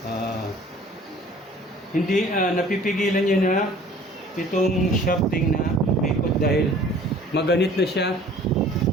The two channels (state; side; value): normal; both; correlation 0.50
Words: Hindi napipigilan niya na itong shafting na umikot dahil maganit na siya